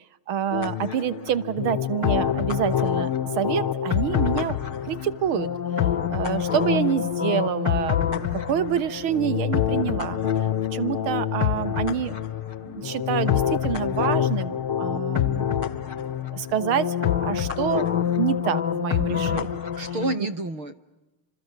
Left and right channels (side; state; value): left; late; 6.5 ms